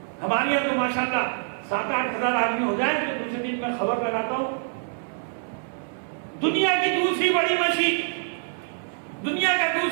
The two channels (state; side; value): silent; left; 61 dB below the other